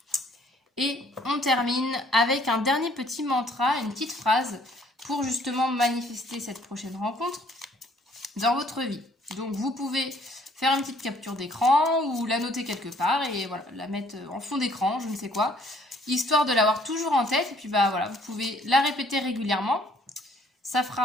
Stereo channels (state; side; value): normal; both; correlation 0.61